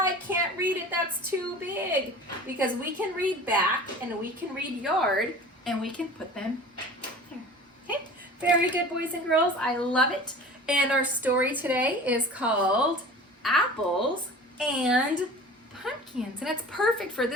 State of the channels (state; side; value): normal; both; correlation 0.40